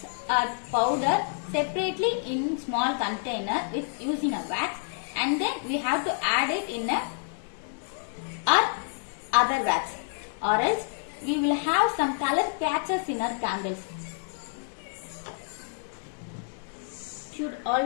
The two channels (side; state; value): right; silent; digital silence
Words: our powder separately in small container with using a wax, and then we have to add it in our other wax, or else we will have some color patches in our candles. Should